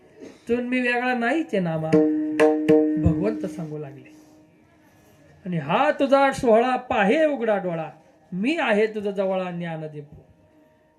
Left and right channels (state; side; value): identical; both; correlation 1.00